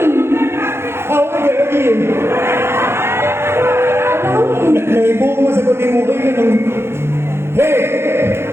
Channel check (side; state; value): left; late; 0.12 ms